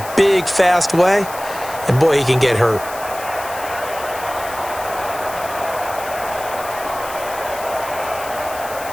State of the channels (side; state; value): left; noise; hiss, 14 dB below the sound